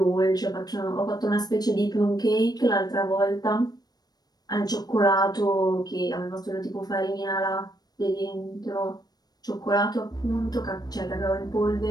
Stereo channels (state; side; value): late; right; 0.19 ms